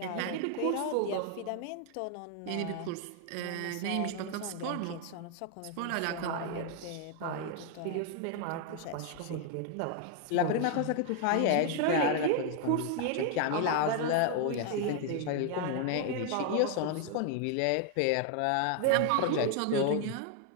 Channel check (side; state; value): both; different; correlation 0.00